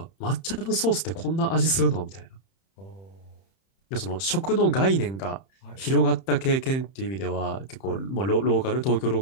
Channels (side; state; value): right; late; 31 ms